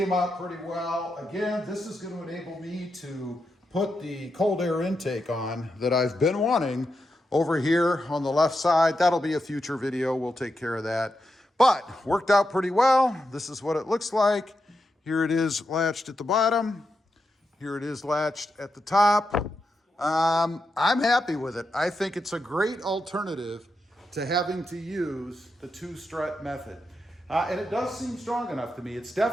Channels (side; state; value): both; normal; correlation 0.86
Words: out pretty well. Again, this is going to enable me to put the cold air intake on that I've been wanting over here on the left side. That'll be a future video. We'll take care of that. But worked out pretty well. This is what it looks like. Here it is latched at the bottom. Here it is latched at the top. I'm happy with it. I think it's a great alternative to having to use the 2-strut method. And it does seem strong enough to me. It's